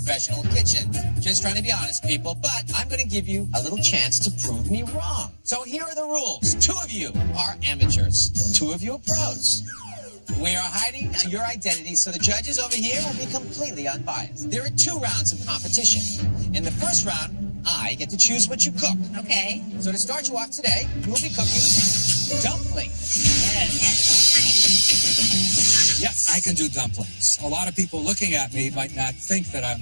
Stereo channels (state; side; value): inverted; both; correlation -1.00